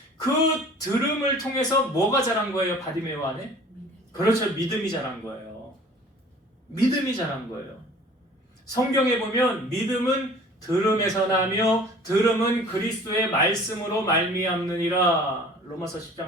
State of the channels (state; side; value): normal; both; correlation 0.48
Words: 그 들음을 통해서 뭐가 자란 거예요? 바디메오 안에? 그렇죠. 믿음이 자란 거예요. 믿음이 자란 거예요. 성경에 보면 믿음은 들음에서 나며 들음은 그리스도의 말씀으로 말미암느니라. 로마서